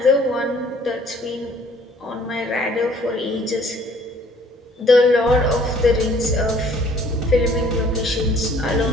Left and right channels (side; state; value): both; normal; correlation 0.58